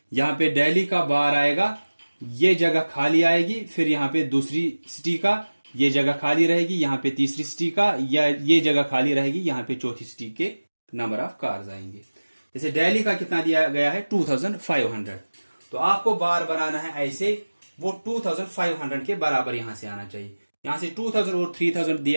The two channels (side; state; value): both; inverted; correlation -1.00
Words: यहां पे दिल्ली का बार आएगा, ये जगह खाली आएगी। फिर यहां पे दूसरी सिटी का ये जगह खाली रहेगी, यहां पे तीसरी सिटी का या ये जगह खाली रहेगी, यहां पे चौथी सिटी के नंबर ऑफ कार्स आएंगे। जैसे दिल्ली का कितना दिया गया है 2500, तो आपको बार बनाना है ऐसे, वो 2500 के बराबर यहां से आना चाहिए। यहां से 2000 और 3000